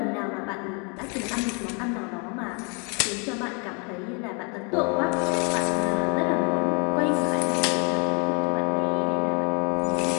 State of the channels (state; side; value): quieter; right; 35.4 dB